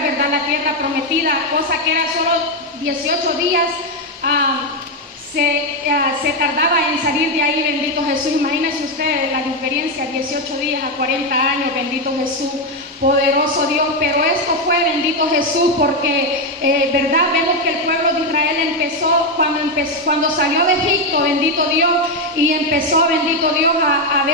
¿verdad?, a la tierra prometida, cosa que era solo 18 días. Se tardaba en salir de ahí, bendito Jesús. Imagínense ustedes la diferencia, 18 días a 40 años, bendito Jesús, poderoso Dios. Pero esto fue, bendito Jesús, porque, verdad, vemos que el pueblo de Israel empezó cuando salió de Egipto, bendito Dios, y empezó, bendito Dios, a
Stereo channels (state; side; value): normal; both; correlation 0.06